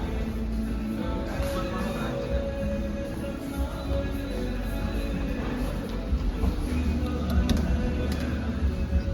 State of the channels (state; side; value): identical; both; correlation 1.00